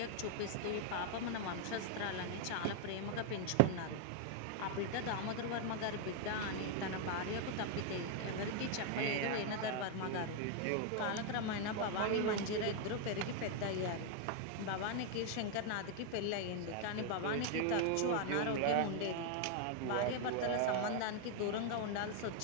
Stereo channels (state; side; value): different; both; correlation 0.00